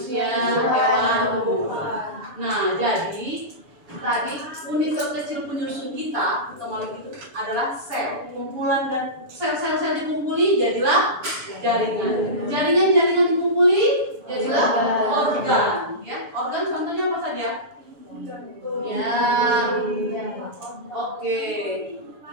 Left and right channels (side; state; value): left; late; 7.0 ms